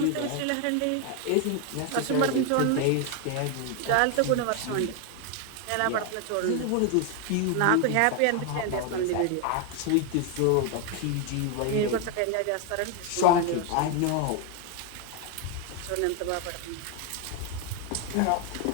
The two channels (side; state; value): both; different; correlation 0.01